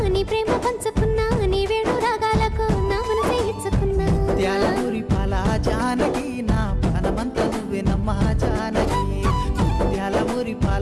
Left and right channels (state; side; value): identical; both; correlation 1.00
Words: ప్రేమ పంచుకున్నా నీ వేడు రాగాలకు నా మనసే ఇచ్చుకున్నా ముత్యాలమూరి పాల జానకి నా ప్రాణమంతా నువ్వే నమ్మా జానకి ముత్యాలమూరి